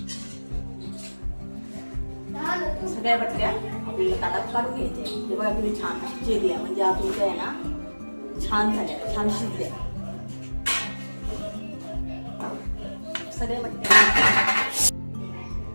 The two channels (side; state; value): both; inverted; correlation -1.00